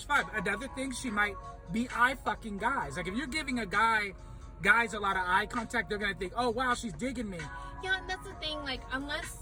vibe. Another thing, she might be eye fucking guys. Like, if you're giving guys a lot of eye contact, they're gonna think, oh wow, she's digging me. Yeah, and that's the thing. Like,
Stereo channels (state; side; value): identical; both; correlation 1.00